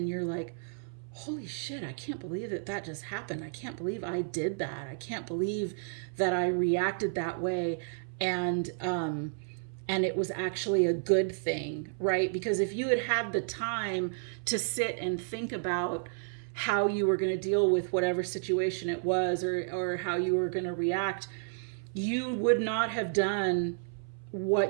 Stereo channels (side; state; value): left; silent; 57 dB below the other